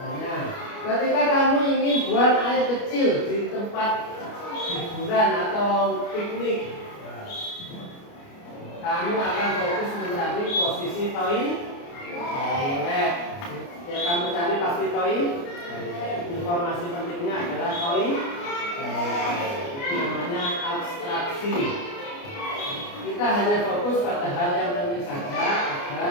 ketika kamu ingin buang air kecil di tempat hiburan atau piknik, kamu akan fokus mencari posisi toilet. Yang kamu cari pasti toilet. Informasi pentingnya adalah toilet. Itu namanya abstraksi. Kita hanya fokus pada hal yang penting saja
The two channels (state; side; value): late; right; 29 ms